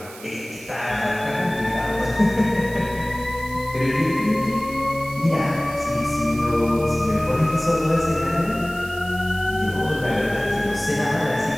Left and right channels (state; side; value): noise; right; hiss, 18 dB below the sound